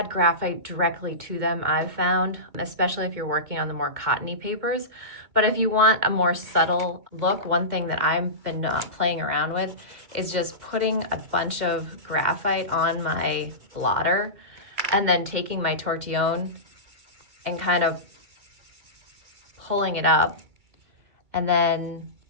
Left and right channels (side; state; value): left; late; 2.1 ms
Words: graphite directly to them, I've found, especially if you're working on the more cottony papers. But if you want a more subtle look, one thing that I've been playing around with is just putting a bunch of graphite on my blotter and then taking my tortillon and kind of pulling it up and then